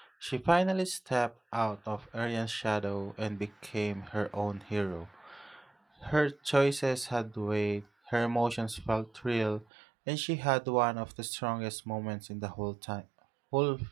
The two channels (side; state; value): left; drops out; at 9.7 s